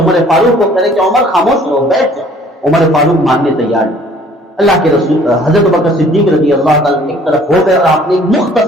فاروق کو کہے کہ عمر خاموش رہو، بیٹھ جاؤ۔ عمر فاروق ماننے تیار نہیں۔ اللہ کے رسول حضرت ابوبکر صدیق رضی اللہ تعالیٰ ایک طرف ہو گئے اور آپ نے ایک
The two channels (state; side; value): normal; both; correlation 0.55